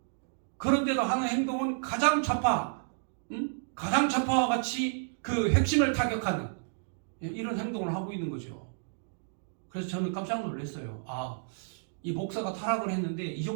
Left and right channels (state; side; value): silent; left; digital silence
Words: 그런데도 하는 행동은 가장 좌파와 같이 그 핵심을 타격하는 이런 행동을 하고 있는 거죠. 그래서 저는 깜짝 놀랐어요. 아, 이 목사가 타락을 했는데 이